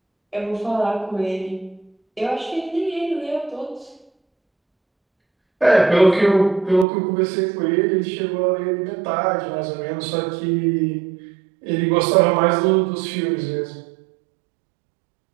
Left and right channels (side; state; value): left; drops out; at 6.9 s